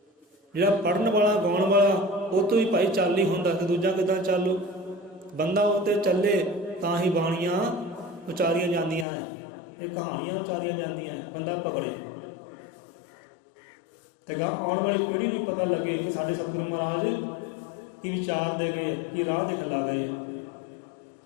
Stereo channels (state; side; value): drops out; right; at 9.1 s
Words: ਜਿਹੜਾ ਪੜ੍ਹਨ ਵਾਲਾ, ਗਾਉਣ ਵਾਲਾ, ਉਹ ਤੋਂ ਹੀ ਭਾਈ ਚੱਲ ਨਹੀਂ ਹੁੰਦਾ ਕਿ ਦੂਜਾ ਕਿੱਦਾਂ ਚੱਲੂ। ਬੰਦਾ ਉਹ 'ਤੇ ਚੱਲੇ ਤਾਂ ਹੀ ਬਾਣੀਆਂ ਉਚਾਰੀਆਂ ਜਾਂਦੀਆਂ ਹੈ, ਇਹ ਕਹਾਣੀਆਂ ਉਚਾਰੀਆਂ ਜਾਂਦੀਆਂ ਹੈ। ਬੰਦਾ ਪਕੜੇ ਤੇ ਗਾ ਆਉਣ ਵਾਲੀ ਪੀੜ੍ਹੀ ਨੂੰ ਵੀ ਪਤਾ ਲੱਗੇ ਕਿ ਸਾਡੇ ਸਤਿਗੁਰੂ ਮਹਾਰਾਜ ਕੀ ਵਿਚਾਰ ਦੇ ਗਏ, ਕੀ ਰਾਹ ਦਿਖਲਾ ਗਏ।